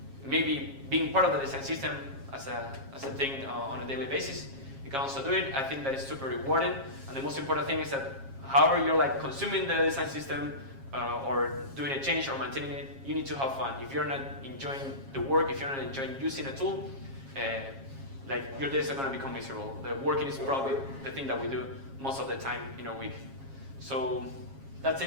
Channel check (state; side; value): late; left; 7.4 ms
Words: maybe being part of the design system as a thing on a daily basis, you can also do it. I think that is super rewarding. And the most important thing is that however you're like consuming the design system or doing a change or maintaining it, you need to have fun. If you're not enjoying the work, if you're not enjoying using a tool, like your days are going to become miserable. The working is probably the thing that we do most of the time in a week. So that's